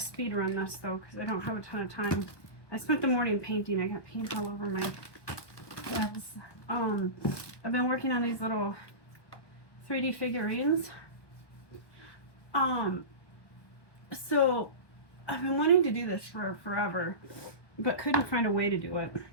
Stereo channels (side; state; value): right; late; 1.2 ms